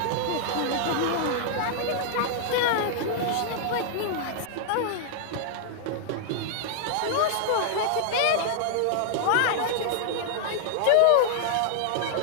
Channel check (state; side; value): different; both; correlation -0.01